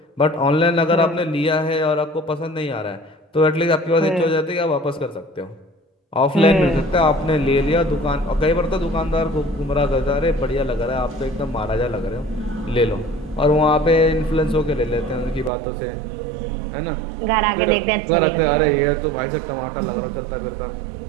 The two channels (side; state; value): left; drops out; at 15.5 s